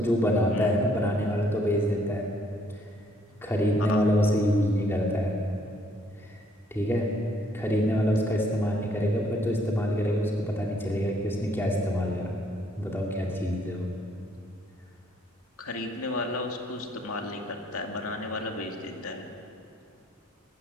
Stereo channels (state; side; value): normal; both; correlation 0.66